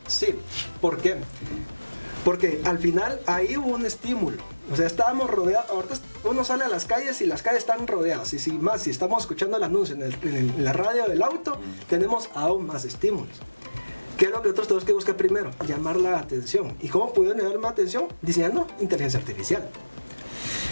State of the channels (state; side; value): inverted; both; correlation -1.00